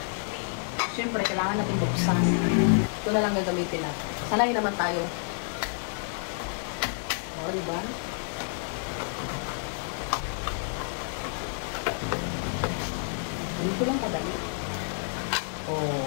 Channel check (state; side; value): silent; right; digital silence